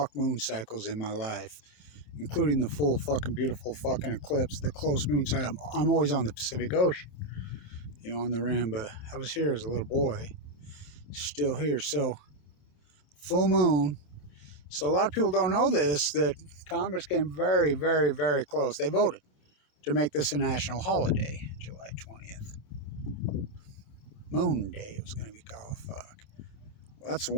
moon cycles in my life, including the full fucking beautiful fucking eclipse, the close moon cycle. I'm always on the Pacific Ocean, on the rim, but I was here as a little boy, still here. So, full moon. So, a lot of people don't know this, that Congress came very, very, very close. They voted to make this a national holiday, July 20th. Moon Day, it was going to be called. Fuck. Well, that's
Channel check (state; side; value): late; right; 27 ms